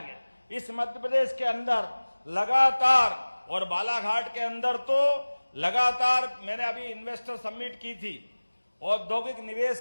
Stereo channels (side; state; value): both; inverted; correlation -1.00